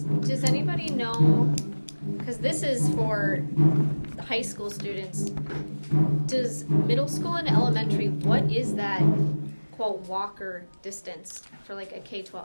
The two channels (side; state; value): both; inverted; correlation -1.00